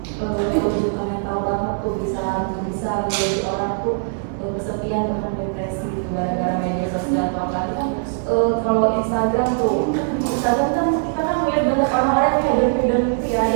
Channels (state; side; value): silent; left; 65 dB below the other